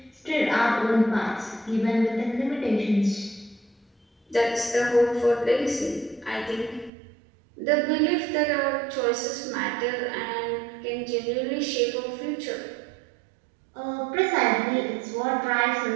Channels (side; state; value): left; drops out; at 6.9 s